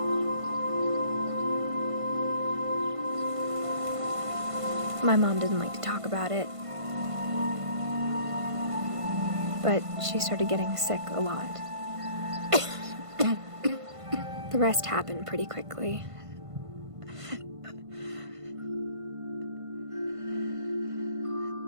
My mom didn't like to talk about it, but she started getting sick a lot. The rest happened pretty quickly.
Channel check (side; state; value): left; late; 1.5 ms